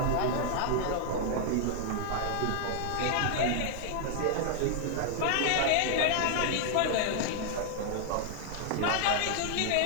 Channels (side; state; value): both; different; correlation 0.00